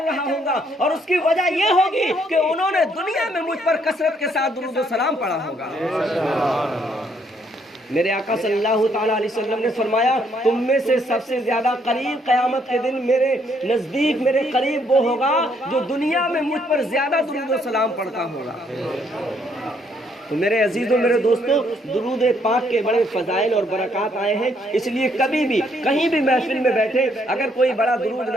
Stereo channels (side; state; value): both; normal; correlation 0.70